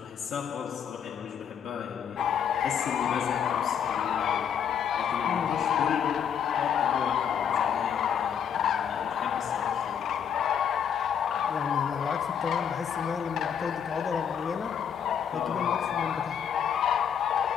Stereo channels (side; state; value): right; quieter; 8.1 dB